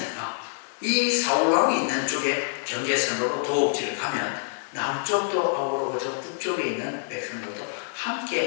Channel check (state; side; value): silent; right; digital silence